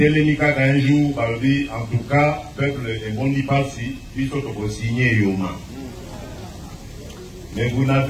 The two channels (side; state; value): both; identical; correlation 1.00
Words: jour, en tout cas, peuple est bon d'y passer, puis surtout signer Yoma. Mais vous